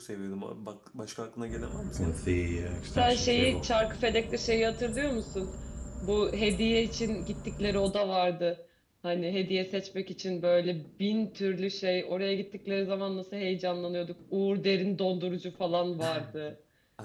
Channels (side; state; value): both; identical; correlation 1.00